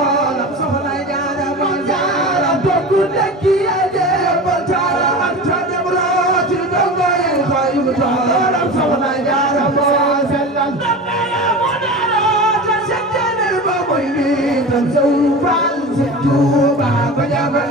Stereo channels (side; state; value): both; normal; correlation 0.31